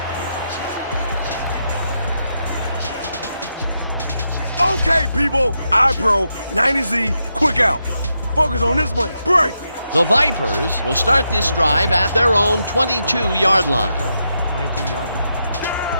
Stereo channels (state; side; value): inverted; both; correlation -0.84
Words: Okay, people. iPro, 90Z, quick out. Focus on this one. Break. The Vipers will start this drive at their own 22-yard line. 22-yard line.